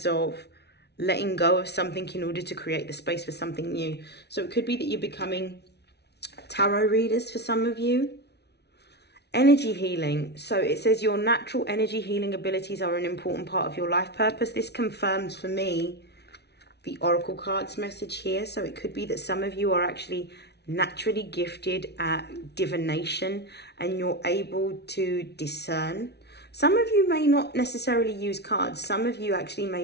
of letting go of something in order to create the space for something new. So it could be that you're becoming tarot readers for some of you. Energy healing. So it says your natural energy healing abilities are an important part of your life purpose. This confirms for me the oracle cards message here. So it could be that some of you are actually naturally gifted at divination and you're able to discern. Some of you may not necessarily use cards. Some of you actually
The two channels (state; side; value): late; right; 0.49 ms